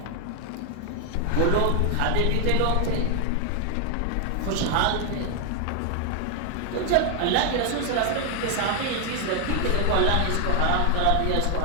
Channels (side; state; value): both; different; correlation 0.00